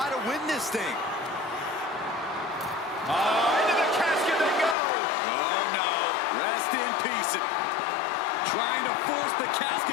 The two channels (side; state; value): right; drops out; at 4.8 s